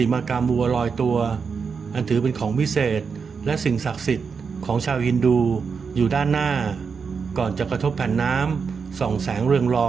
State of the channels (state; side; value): quieter; left; 5.7 dB